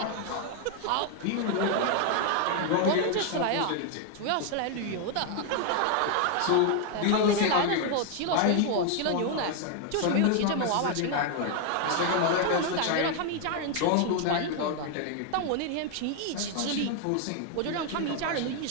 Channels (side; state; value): both; different; correlation 0.00